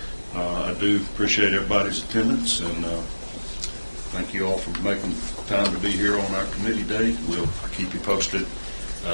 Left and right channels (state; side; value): inverted; both; correlation -1.00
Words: I do appreciate everybody's attendance, and thank you all for making time to be here on our committee day. We'll keep you posted